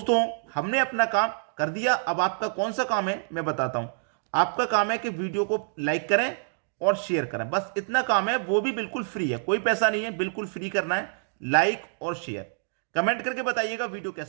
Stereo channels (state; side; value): silent; left; digital silence